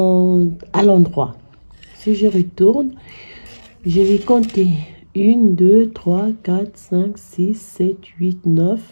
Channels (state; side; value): inverted; both; correlation -1.00